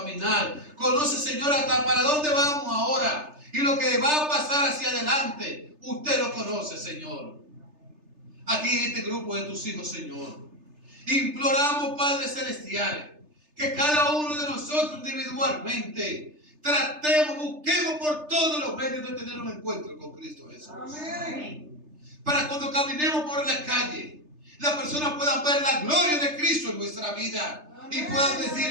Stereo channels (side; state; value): left; late; 3.3 ms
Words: Conoce, Señor, hasta para dónde vamos ahora. Y lo que va a pasar hacia adelante, usted lo conoce, Señor. Aquí en este grupo de tus hijos, Señor, imploramos, Padre Celestial, que cada uno de nosotros individualmente busquemos por todos los medios de tener un encuentro con Cristo Jesús. Amén. Para cuando caminemos por la calle, las personas puedan ver la gloria de Cristo en nuestra vida. Amén. Y puedan